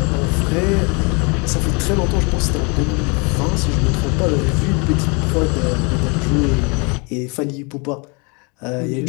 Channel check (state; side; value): quieter; right; 31.3 dB